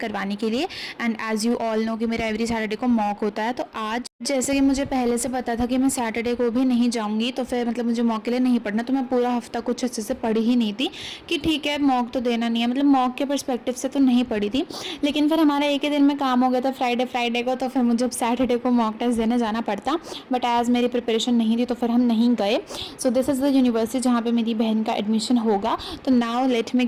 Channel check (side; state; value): both; identical; correlation 1.00